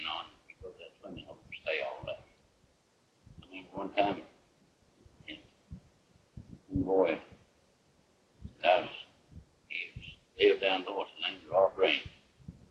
know, and we go to that swimming hole and stay all day. I remember one time, one boy, he lived down north, his name was Rob Green.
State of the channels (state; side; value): identical; both; correlation 1.00